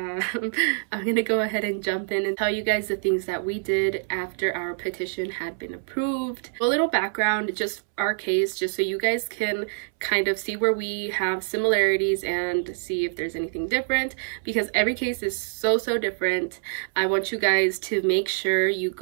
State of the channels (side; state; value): left; silent; 61 dB below the other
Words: gonna go ahead and jump in and tell you guys the things that we did after our petition had been approved. A little background, just our case, just so you guys can kind of see where we have similarities and see if there's anything different, because every case is so different. I want you guys to make sure you